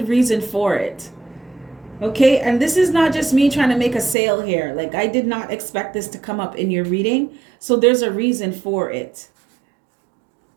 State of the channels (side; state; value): left; drops out; at 4.2 s